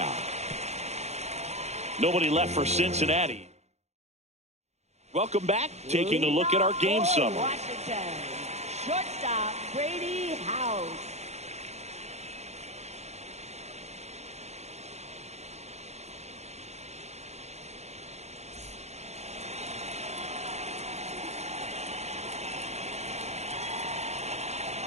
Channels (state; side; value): late; left; 0.32 ms